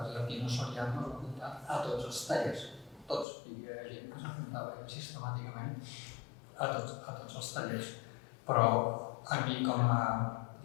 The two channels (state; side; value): drops out; right; at 3.2 s